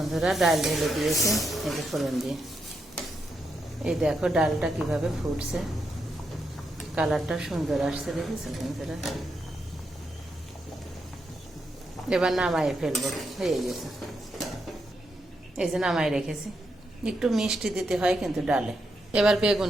ডাল ঢেলে দিয়েছে এই যে ফোড়ন দিয়ে। এই দেখো ডালটা কিভাবে ফুটছে, কালারটা সুন্দর আসছে, দেখেছো বন্ধুরা। এবার নামাই ফেলবো, হয়ে গেছে। এই যে নামাই রেখেছি, একটু মিষ্টি দিতে হয় কিন্তু ডালে। এবার বেগুন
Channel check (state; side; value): normal; both; correlation 0.82